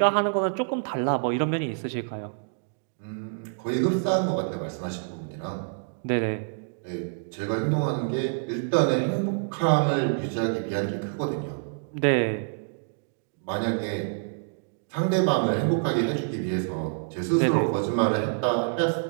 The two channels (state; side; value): silent; left; digital silence